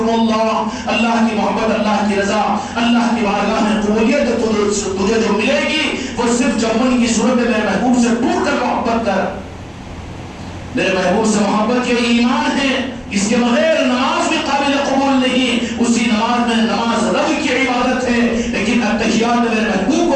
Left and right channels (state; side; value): identical; both; correlation 1.00